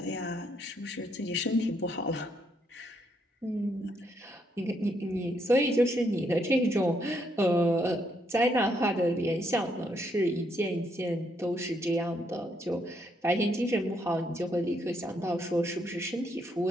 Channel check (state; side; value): normal; both; correlation 0.74